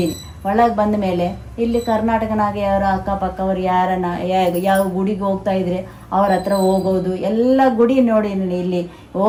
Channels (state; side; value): identical; both; correlation 1.00